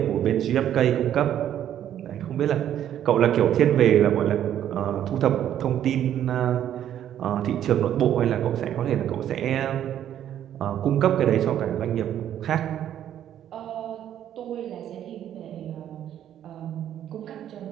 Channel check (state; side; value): quieter; left; 10.7 dB